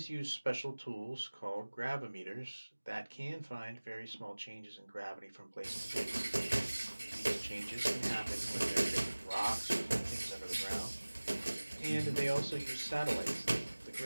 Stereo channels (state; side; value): inverted; both; correlation -1.00